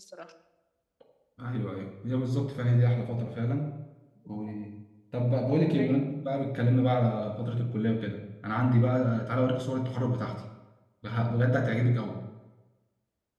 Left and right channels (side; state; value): both; identical; correlation 1.00